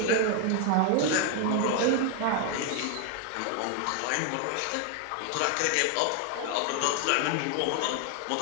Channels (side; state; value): both; different; correlation 0.01